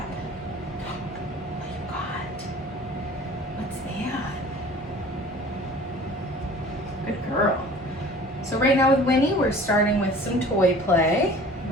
What you got? What's that? Good girl. So right now with Winnie, we're starting with some toy play.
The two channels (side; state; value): both; normal; correlation 0.46